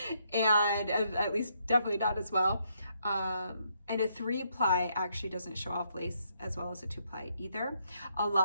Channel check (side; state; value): both; inverted; correlation -0.75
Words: and at least definitely not as well. And a 3-ply actually doesn't show off lace as well as a 2-ply either. A